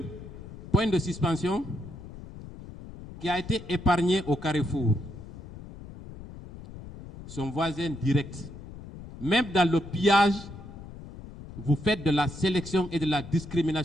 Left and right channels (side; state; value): left; noise; rumble, 14 dB below the sound